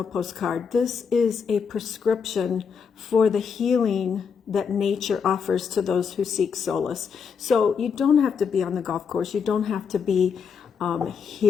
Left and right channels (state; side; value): quieter; right; 6.3 dB